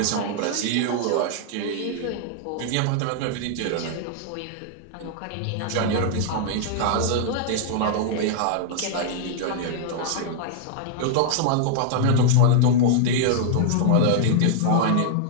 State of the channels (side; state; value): both; different; correlation -0.01